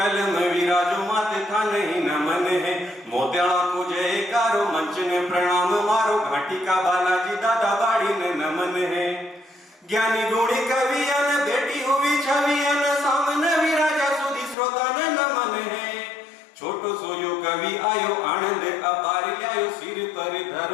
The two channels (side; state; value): right; drops out; at 14.6 s